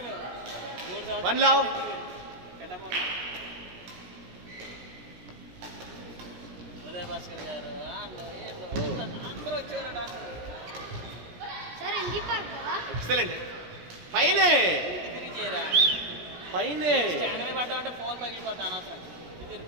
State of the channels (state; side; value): late; left; 17 ms